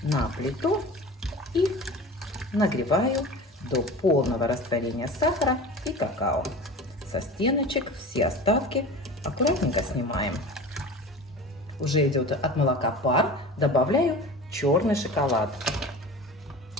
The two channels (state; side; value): normal; both; correlation 0.36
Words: на плиту и нагреваю до полного растворения сахара и какао. Со стеночек все остатки аккуратненько снимаем. Уже идет от молока пар, добавляю черный шоколад.